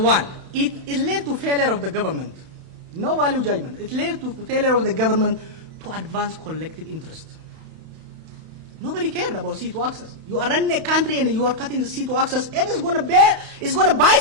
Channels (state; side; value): late; left; 31 ms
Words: It led to failure of the government. No value judgment. It led to failure of the government to advance collective interest. Nobody cared about C2 access. You are running a country and you are cutting the C2 access, and it's going to